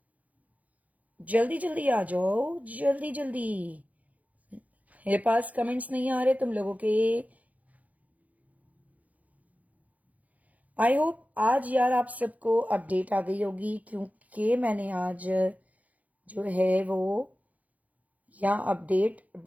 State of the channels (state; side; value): late; left; 0.074 ms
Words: जल्दी जल्दी आ जाओ, जल्दी जल्दी। मेरे पास कमेंट्स नहीं आ रहे तुम लोगों के। आई होप आज यार आप सबको अपडेट आ गई होगी, क्योंकि मैंने आज जो है वो यहाँ अपडेट